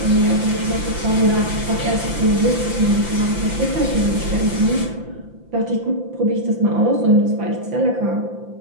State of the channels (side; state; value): left; late; 5.9 ms